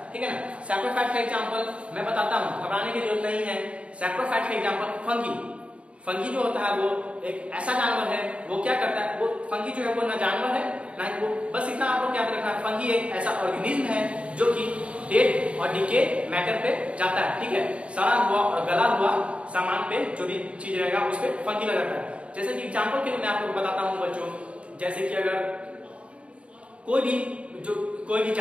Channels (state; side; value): late; left; 0.061 ms